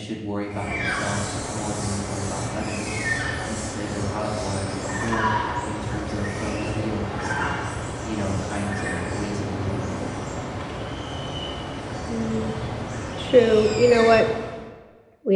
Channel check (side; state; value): both; identical; correlation 1.00